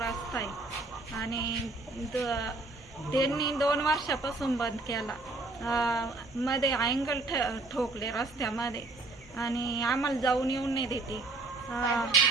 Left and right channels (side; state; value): left; quieter; 3.2 dB